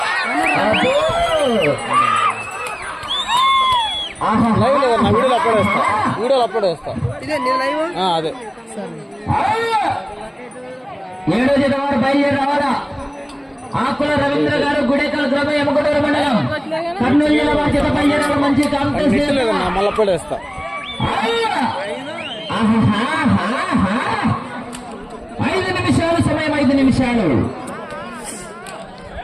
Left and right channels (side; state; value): both; identical; correlation 1.00